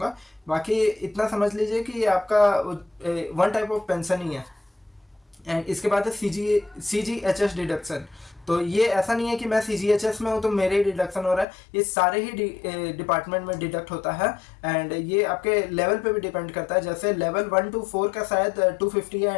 बाकी इतना समझ लीजिए कि ये आपका वन टाइप ऑफ पेंशन ही है। एंड इसके बाद है CGHS डिडक्शन। तो ये ऐसा नहीं है कि मैं CGHS में हूँ तो मेरे ही डिडक्शन हो रहा है, ये सारे ही डिपार्टमेंट में डिडक्ट होता है। एंड ये आपके लेवल पे भी डिपेंड करता है, जैसे लेवल 1 to 4 का शायद 250 है,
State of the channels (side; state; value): right; drops out; at 11.5 s